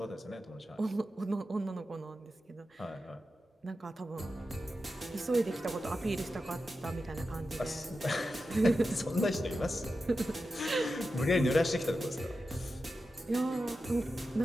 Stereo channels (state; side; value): normal; both; correlation 0.91